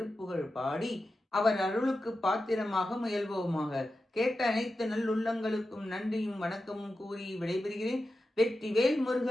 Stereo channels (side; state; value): both; normal; correlation 0.91